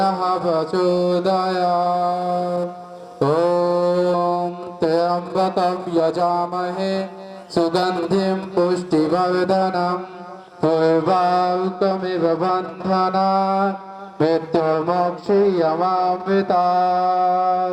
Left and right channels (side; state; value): both; identical; correlation 1.00